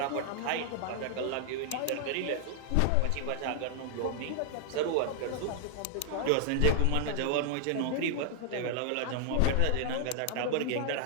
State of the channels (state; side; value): different; both; correlation -0.01